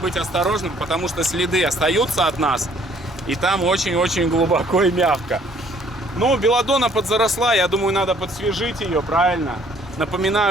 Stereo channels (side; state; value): both; normal; correlation 0.60